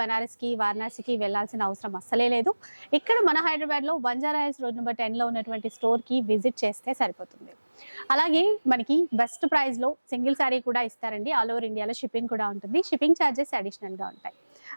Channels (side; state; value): both; inverted; correlation -1.00